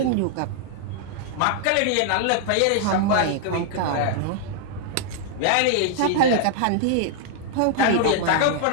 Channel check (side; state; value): both; different; correlation -0.01